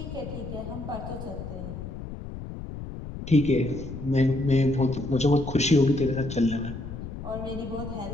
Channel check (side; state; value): left; noise; rumble, 9 dB below the sound